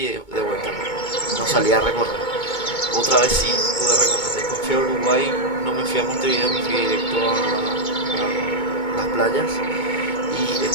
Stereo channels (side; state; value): right; late; 2.2 ms